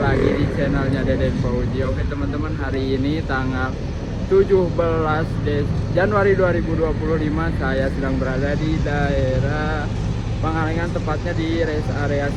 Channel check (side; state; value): both; identical; correlation 1.00